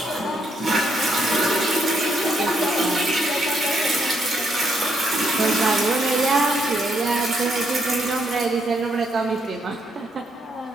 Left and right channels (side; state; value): both; normal; correlation 0.75